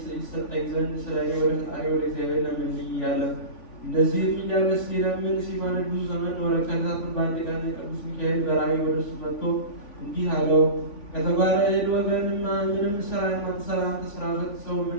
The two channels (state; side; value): late; right; 3.5 ms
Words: ይሰጠኝ ዘንድ ስለ እኔ ወደ ፈጣሪ ወደ እግዚአብሔር ለምንልኝ እያለ እንደዚህም እያለ ሲለምን ሲማልድ ብዙ ዘመን ኖረ። ከዕለታትም በአንድ ቀን ቅዱስ ሚካኤል በራእይ ወደ እሱ መጥቶ እንዲህ አለው፣ ከተባለ እህል ወገንማ ምንም ስራ የማትሰራ አንተ ስራ ፈት ሰው ምን